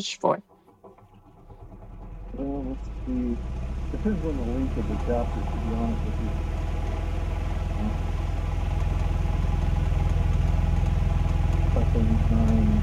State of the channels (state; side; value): identical; both; correlation 1.00